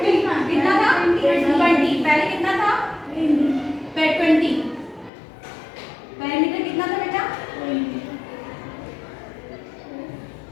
कितना था? 20. पहले कितना था? 20. पेरीमीटर कितना था बेटा?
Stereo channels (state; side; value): drops out; right; at 5.1 s